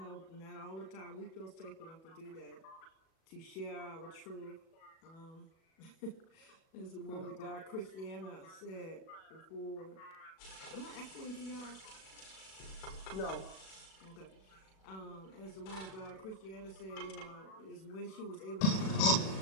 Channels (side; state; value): right; late; 37 ms